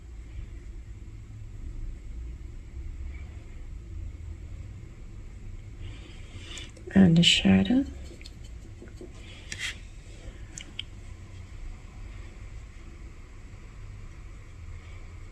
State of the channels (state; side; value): identical; both; correlation 1.00